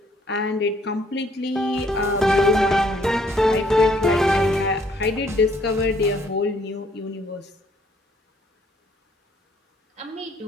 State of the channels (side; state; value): both; normal; correlation 0.65